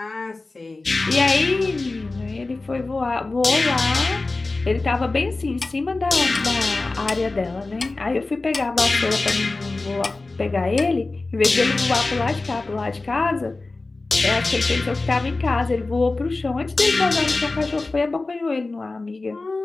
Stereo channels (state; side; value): quieter; right; 3.4 dB